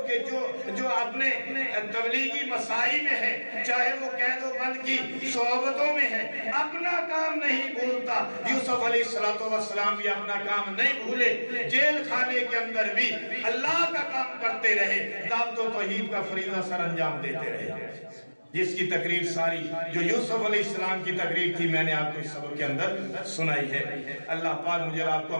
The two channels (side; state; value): both; inverted; correlation -1.00